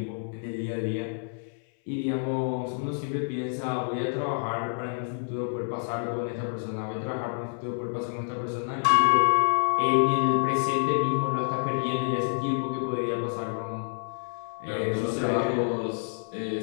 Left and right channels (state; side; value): silent; right; 59 dB below the other